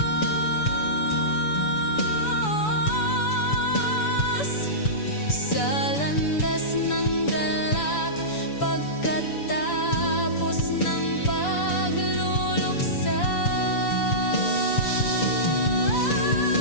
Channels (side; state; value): right; late; 6.9 ms